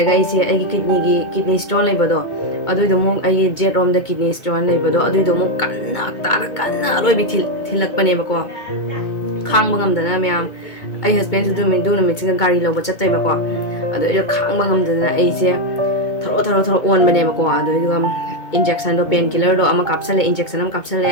ꯑꯩꯒꯤ ꯀꯤꯗꯅꯤ ꯁ꯭ꯇꯣꯟ ꯂꯩꯕꯗꯣ ꯑꯗꯨꯏꯗꯣ ꯑꯃꯨꯛ ꯑꯩꯒꯤ ꯖꯦꯠ ꯔꯣꯝꯗ ꯀꯤꯗꯅꯤ ꯁ꯭ꯇꯣꯟ ꯂꯩꯕꯗꯣ ꯑꯗꯨꯏꯗꯣ ꯑꯃꯨꯛ ꯀꯟꯅ ꯑꯔꯣꯏꯕꯤ ꯊꯤꯜꯂꯛꯄꯅꯦꯕꯀꯣ ꯈꯥꯡꯕ ꯉꯝꯗꯅ ꯃꯌꯥꯝ ꯑꯩ ꯍꯁꯕꯦꯟꯁꯨ ꯑꯗꯨ ꯅꯨꯃꯤꯠꯁꯤꯒ ꯒꯥꯔꯤ ꯂꯧꯕ ꯆꯠꯇꯣꯏꯕꯀꯣ ꯑꯗꯣ ꯑꯩꯗꯣ ꯈꯥꯡꯕ ꯉꯝꯗꯅ ꯑꯩꯁꯦ ꯊꯔꯣ ꯑꯣꯟꯕꯅꯦꯕꯀꯣ ꯑꯗꯨꯏꯗꯨꯒ ꯏꯟꯖꯦꯛꯁꯟꯗꯣ ꯄꯦꯟ ꯀꯤꯂꯔꯗꯣ ꯑꯃ ꯀꯥꯞꯁꯜꯂꯦ ꯏꯟꯖꯦꯛꯁꯟ ꯑꯃ ꯀꯥꯞꯁꯜꯂꯦ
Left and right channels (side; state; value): right; late; 2.2 ms